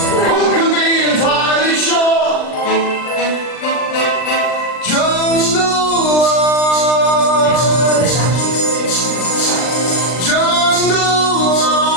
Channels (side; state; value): right; late; 39 ms